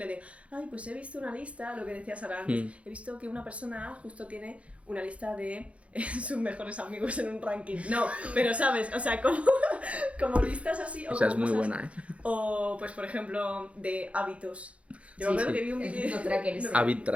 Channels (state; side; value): late; left; 0.063 ms